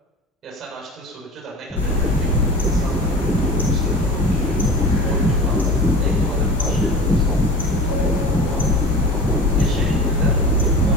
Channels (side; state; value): both; normal; correlation 0.35